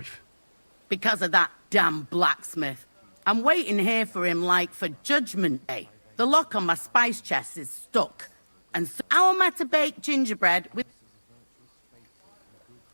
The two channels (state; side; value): inverted; both; correlation -1.00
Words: Because of that damn blacksmith. I'm waiting here for him like for Judgment Day. The lock on my spice chest is stuck. And so how am I to bake gingerbread with...